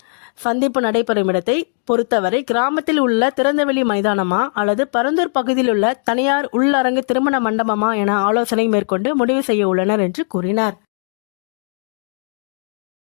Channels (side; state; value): right; silent; digital silence